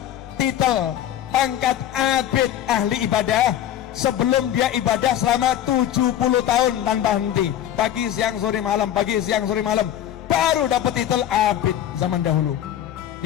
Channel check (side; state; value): right; quieter; 11.4 dB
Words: titel pangkat abid ahli ibadah sebelum dia ibadah selama 70 tahun tanpa henti, pagi siang sore malam, pagi siang sore malam, baru dapat titel abid zaman dahulu.